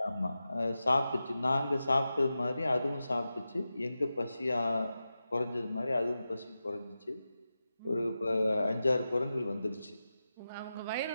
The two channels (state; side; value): inverted; both; correlation -0.92